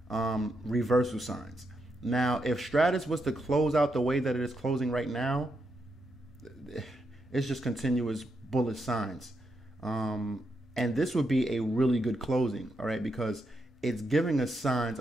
reversal signs. Now, if Stratus was to close out the way that it is closing right now, it's just continuous bullish signs. And this would be a really good closing, all right, because it's giving us signs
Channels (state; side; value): normal; both; correlation 0.82